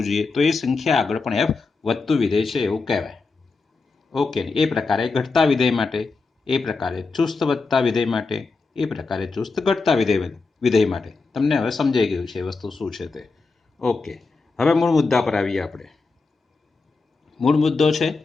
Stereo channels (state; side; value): quieter; right; 4.1 dB